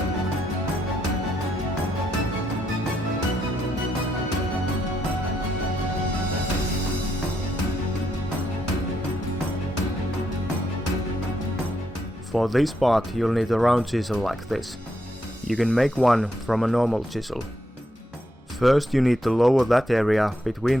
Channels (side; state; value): both; normal; correlation 0.79